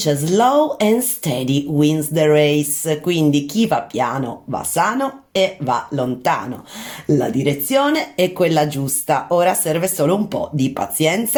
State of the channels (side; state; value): both; identical; correlation 1.00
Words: slow and steady wins the race, quindi chi va piano va sano e va lontano. La direzione è quella giusta, ora serve solo un po' di